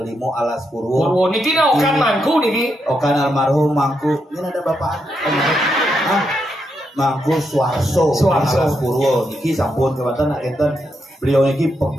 Alas Purwo. Niki na okan mangku niki. Okan almarhum mangku. Ini ada bapak. Mangku Suarso Alas Purwo niki sampun kebetulan nak enten beliau niki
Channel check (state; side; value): normal; both; correlation 0.82